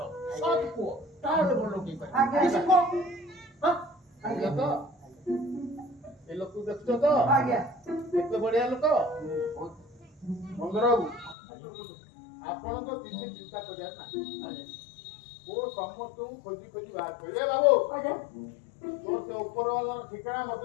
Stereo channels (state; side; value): drops out; right; at 11.4 s